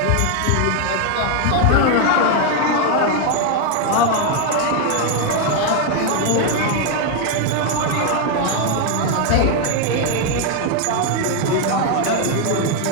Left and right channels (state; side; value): different; both; correlation 0.01